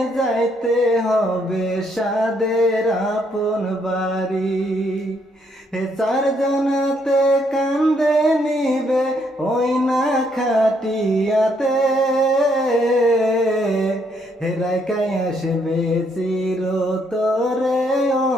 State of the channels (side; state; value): both; normal; correlation 0.72